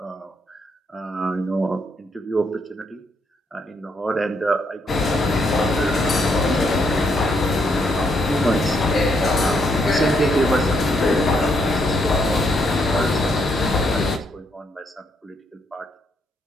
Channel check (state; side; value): normal; both; correlation 0.75